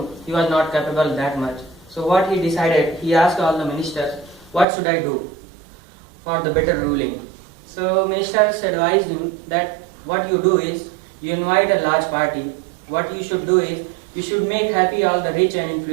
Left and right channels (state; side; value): drops out; left; at 4.7 s